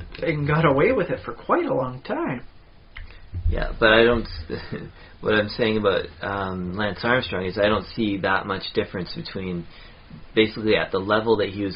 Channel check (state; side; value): identical; both; correlation 1.00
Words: And got away with it for quite a long time. Yeah, but I don't. What I'm saying about Lance Armstrong is I don't see that much difference between basically at the level that he was